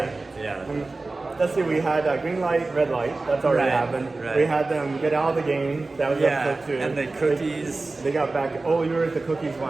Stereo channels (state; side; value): quieter; left; 3.4 dB